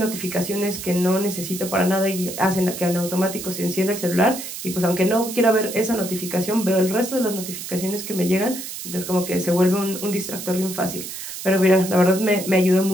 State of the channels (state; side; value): noise; right; hiss, 9 dB below the sound